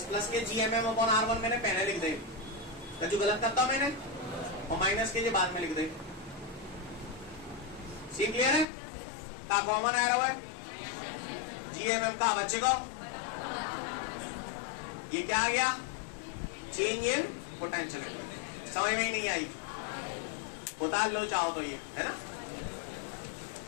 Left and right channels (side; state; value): right; drops out; at 8.7 s